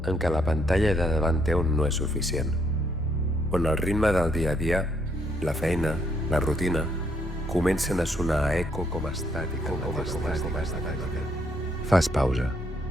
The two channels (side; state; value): both; normal; correlation 0.72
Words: en què la pantalla de davant teu no és suficient, on el ritme del dia a dia, la feina, la rutina, comencen a sonar a eco com estàtica. Fas pausa.